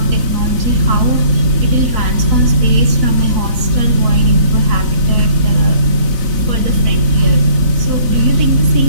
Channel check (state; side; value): late; left; 4.0 ms